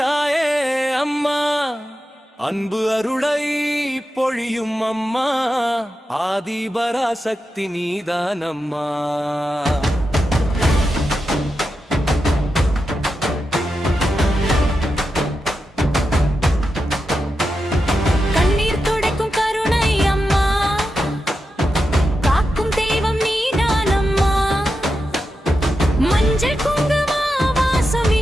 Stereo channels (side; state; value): both; normal; correlation 0.89